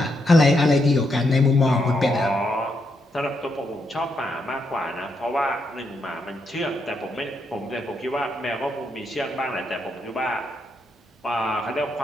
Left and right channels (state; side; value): normal; both; correlation 0.80